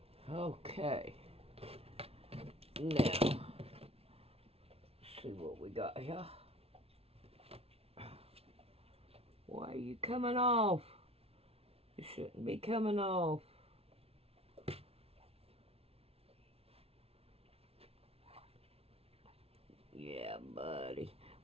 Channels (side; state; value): left; late; 0.29 ms